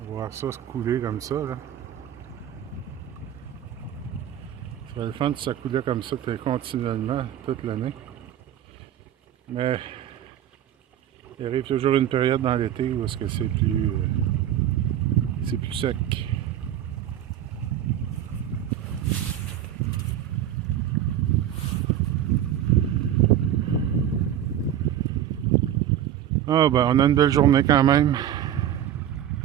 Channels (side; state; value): left; quieter; 10.8 dB